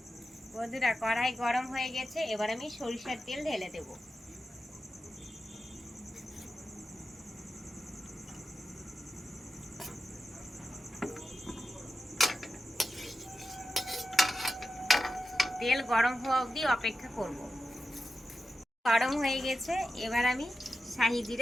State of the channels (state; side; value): normal; both; correlation 0.91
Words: বন্ধুরা, কড়াই গরম হয়ে গেছে, এবার আমি সরিষার তেল ঢেলে দেব। তেল গরম হওয়া অবধি অপেক্ষা করব। গরম হয়ে গেছে, এবার আমি শাহি